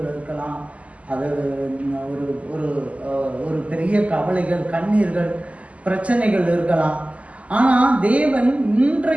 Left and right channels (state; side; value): late; left; 0.066 ms